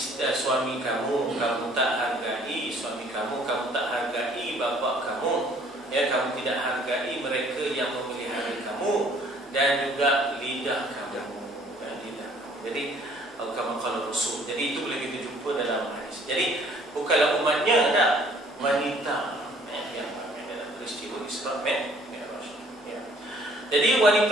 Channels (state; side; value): normal; both; correlation 0.58